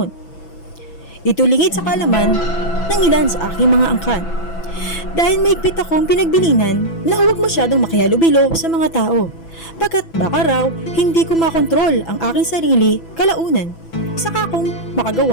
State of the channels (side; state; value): right; late; 6.0 ms